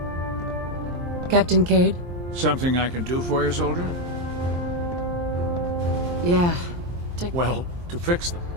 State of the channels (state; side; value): late; left; 23 ms